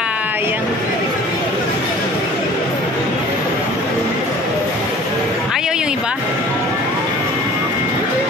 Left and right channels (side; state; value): both; normal; correlation 0.47